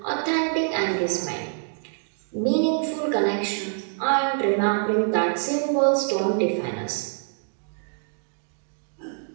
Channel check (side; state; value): left; silent; digital silence